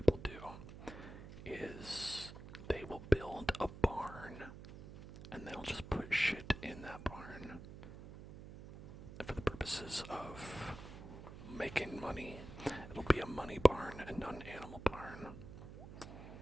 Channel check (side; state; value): right; noise; hum, 13 dB below the sound